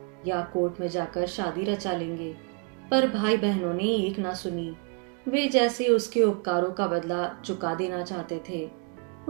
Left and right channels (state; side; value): quieter; left; 34.1 dB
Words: या कोर्ट में जाकर शादी रचा लेंगे, पर भाई बहनों ने एक ना सुनी। वे जैसे उसके उपकारों का बदला चुका देना चाहते थे।